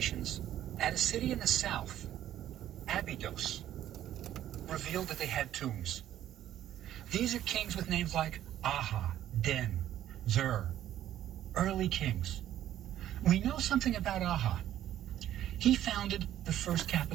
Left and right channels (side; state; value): left; quieter; 12.0 dB